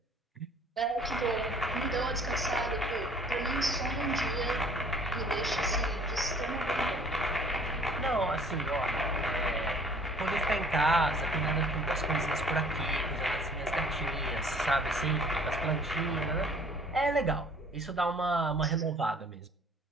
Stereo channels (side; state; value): both; normal; correlation 0.54